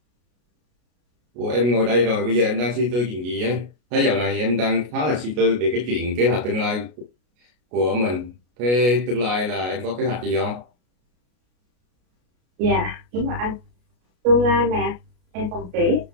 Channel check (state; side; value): late; left; 33 ms